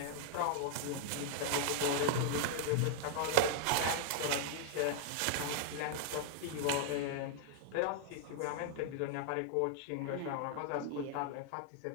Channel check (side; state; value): both; different; correlation 0.00